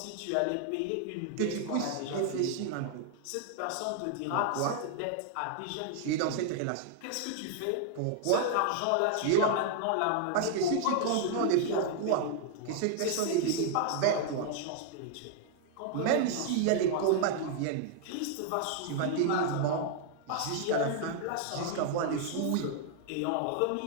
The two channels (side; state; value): both; different; correlation 0.00